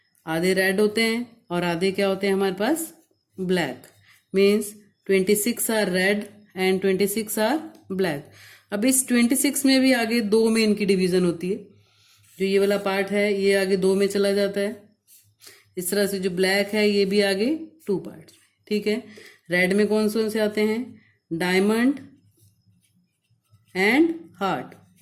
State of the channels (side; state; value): both; identical; correlation 1.00